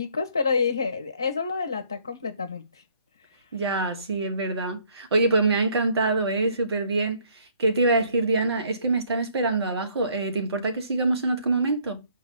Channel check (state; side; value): inverted; both; correlation -0.63